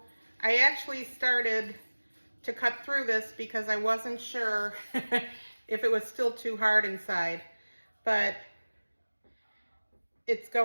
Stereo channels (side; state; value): both; inverted; correlation -1.00